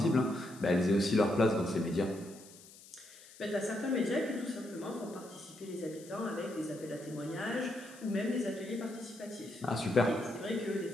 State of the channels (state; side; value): noise; left; hiss, 20 dB below the sound